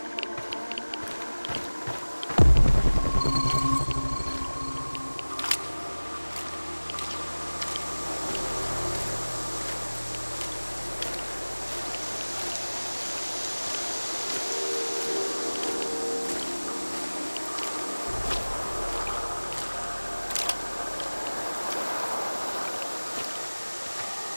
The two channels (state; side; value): inverted; both; correlation -1.00